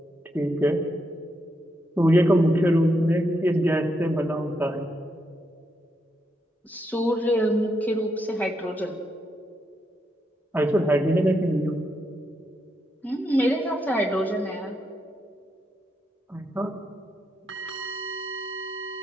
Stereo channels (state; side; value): normal; both; correlation 0.80